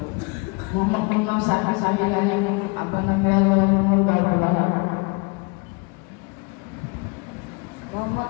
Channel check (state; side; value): quieter; right; 29.7 dB